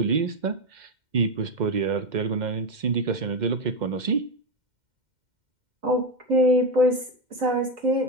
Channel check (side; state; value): left; late; 2.1 ms